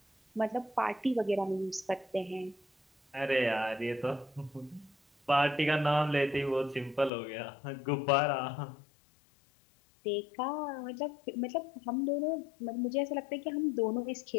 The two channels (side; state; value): right; drops out; at 7.1 s